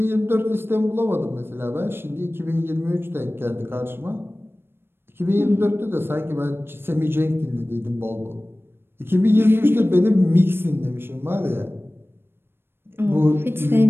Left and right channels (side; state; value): left; late; 0.11 ms